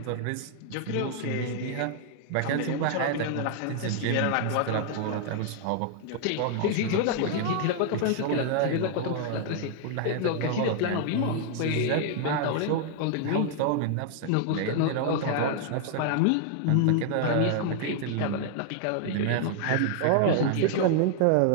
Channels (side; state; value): both; different; correlation 0.00